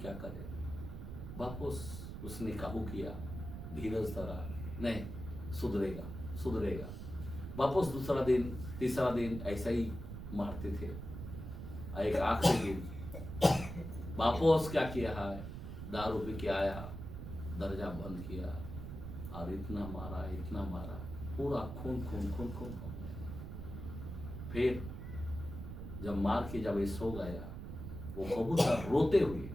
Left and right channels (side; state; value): right; noise; rumble, 8 dB below the sound